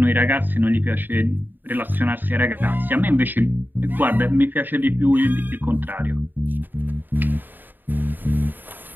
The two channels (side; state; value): left; late; 0.091 ms